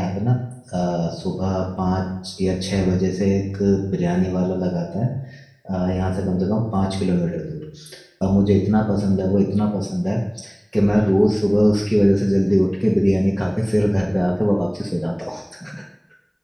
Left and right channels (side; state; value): both; identical; correlation 1.00